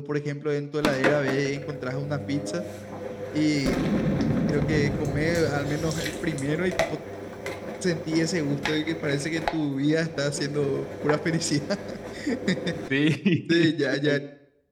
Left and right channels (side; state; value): both; identical; correlation 1.00